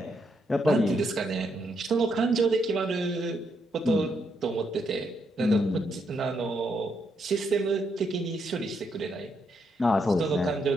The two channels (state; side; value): normal; both; correlation 0.78